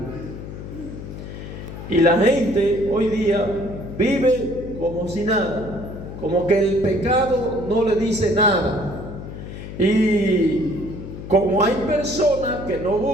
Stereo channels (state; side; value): noise; left; hum, 10 dB below the sound